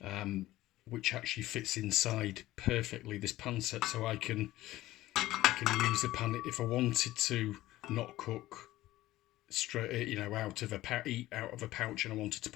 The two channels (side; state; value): right; quieter; 16.2 dB